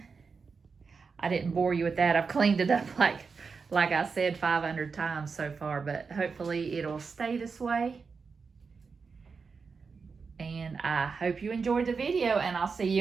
I didn't bore you with that. I've cleaned it up like I said 500 times so far, but hopefully it'll stay this way. And I hope you enjoyed the video, and I'll see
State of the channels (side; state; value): left; quieter; 5.1 dB